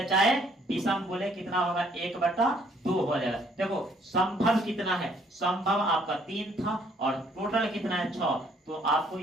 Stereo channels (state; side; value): normal; both; correlation 0.64